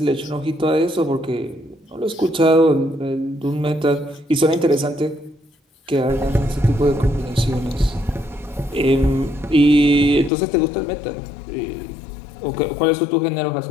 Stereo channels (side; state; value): right; drops out; at 10.3 s